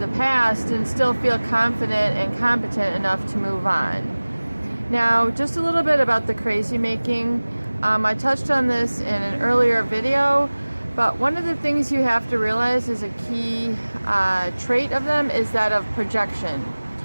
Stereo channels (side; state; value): both; inverted; correlation -1.00